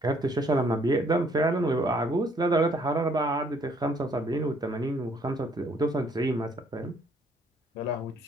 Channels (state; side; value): normal; both; correlation 0.65